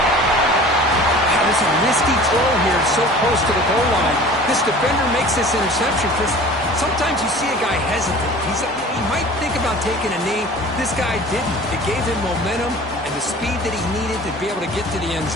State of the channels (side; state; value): both; normal; correlation 0.43